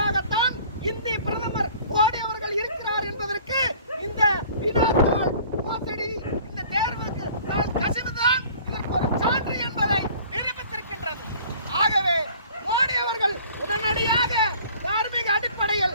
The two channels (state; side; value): inverted; both; correlation -0.49